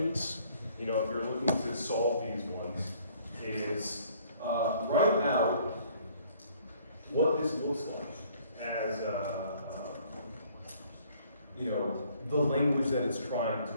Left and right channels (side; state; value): both; inverted; correlation -0.59